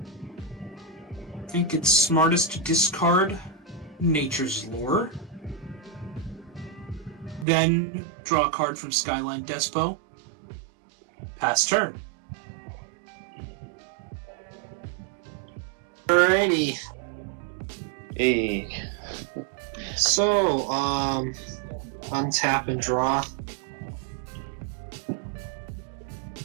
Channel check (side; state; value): left; drops out; at 7.5 s